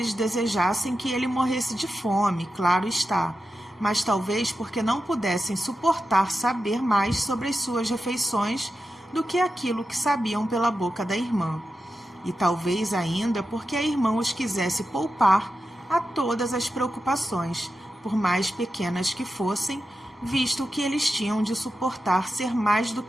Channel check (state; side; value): normal; both; correlation 0.91